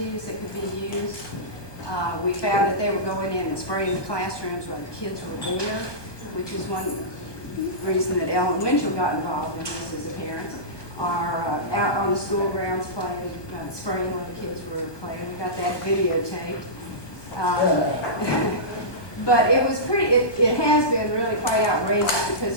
that could be used. We found that they were going in and spraying the classrooms when the kids were there, which is one reason that Ellen Winchell got involved in this as a parent, are out on the school grounds playing, spraying when the kids were playing. We got that videotaped. But it was it has been really quite outrageous because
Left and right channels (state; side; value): late; right; 1.2 ms